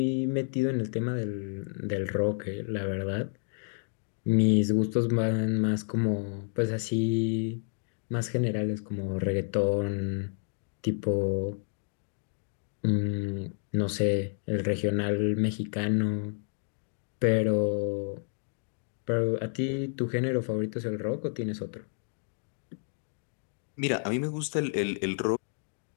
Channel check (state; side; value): silent; right; 58 dB below the other